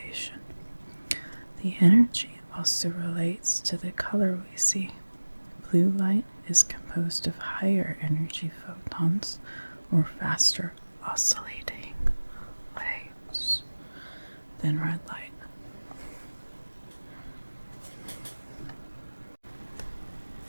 The energy also relates to the color we see. Blue light is composed of higher energy photons or faster oscillating waves than red light.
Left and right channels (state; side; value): inverted; both; correlation -1.00